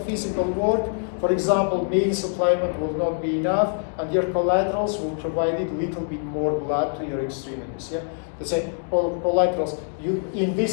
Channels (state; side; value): silent; right; 58 dB below the other